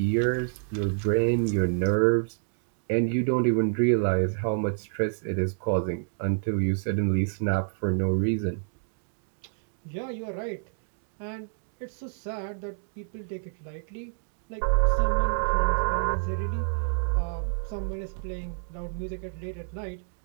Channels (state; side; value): silent; left; digital silence